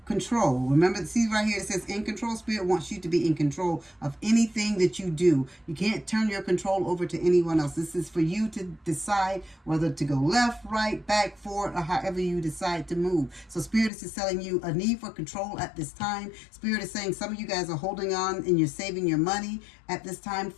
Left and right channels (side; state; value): right; drops out; at 13.9 s